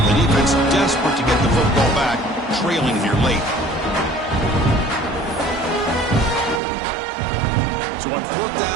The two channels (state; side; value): drops out; left; at 6.6 s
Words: The defense desperate to get the football back, trailing here late. So on 4th